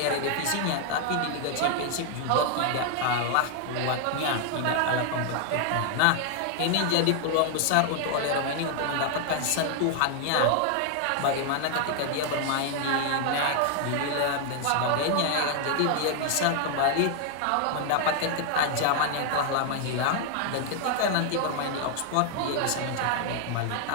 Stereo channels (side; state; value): both; different; correlation 0.00